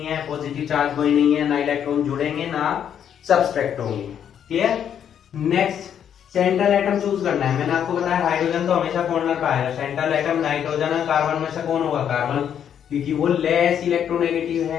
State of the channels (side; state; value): right; quieter; 8.9 dB